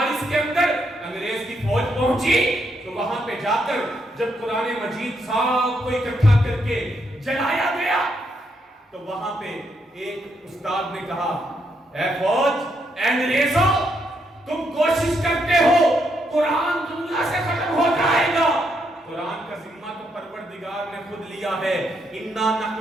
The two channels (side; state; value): both; normal; correlation 0.77